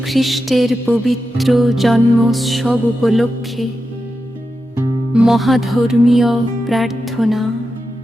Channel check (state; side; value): normal; both; correlation 0.89